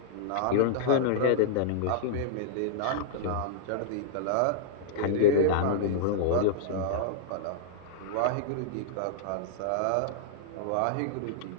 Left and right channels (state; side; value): different; both; correlation -0.02